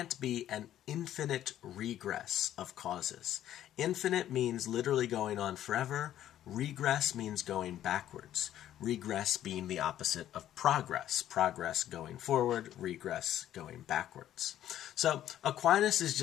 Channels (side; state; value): right; quieter; 11.9 dB